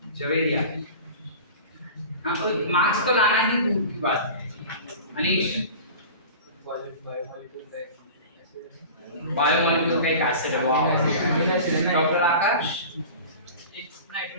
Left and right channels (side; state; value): both; inverted; correlation -0.36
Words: जवेरिया. हाँ, तो मार्क्स तो लाना ही दूर की बात है. अनीश. बायोमोलिक्यूल का एक एसिड है. Doctor Akash. It's